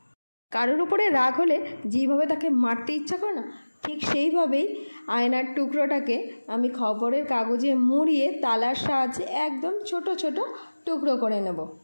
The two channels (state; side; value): inverted; both; correlation -1.00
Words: কারোর উপরে রাগ হলে যেভাবে তাকে মারতে ইচ্ছা করে না, ঠিক সেইভাবেই আয়নার টুকরোটাকে আমি খবরের কাগজে মুড়িয়ে তালার সাহায্যে একদম ছোট ছোট টুকরো করে নেব।